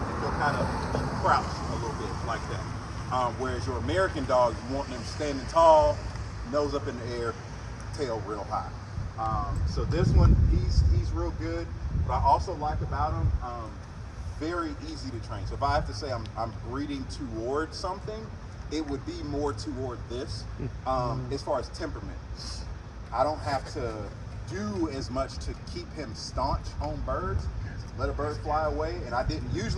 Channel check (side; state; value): both; identical; correlation 1.00